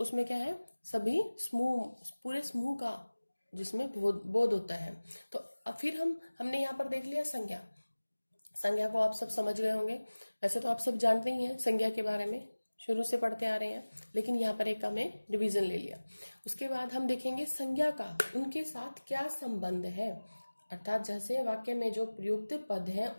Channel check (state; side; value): inverted; both; correlation -1.00